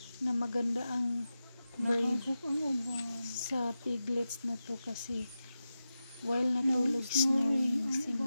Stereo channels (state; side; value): inverted; both; correlation -0.92